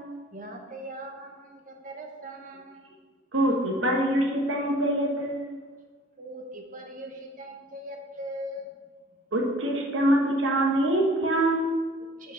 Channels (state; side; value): normal; both; correlation 0.50